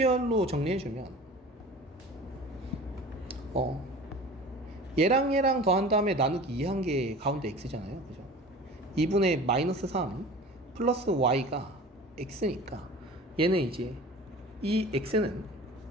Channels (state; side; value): normal; both; correlation 0.40